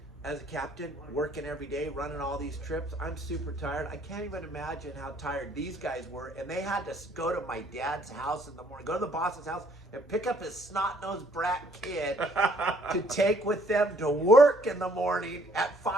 as a captain, working every day, running all these trips. I'm super tired. I can't even imagine how tired these guys were. And they had to go to my dad's house in the morning, go to the boss's house, and pick up his snot-nosed brat kid to take with them to work in the morning at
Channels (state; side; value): normal; both; correlation 0.64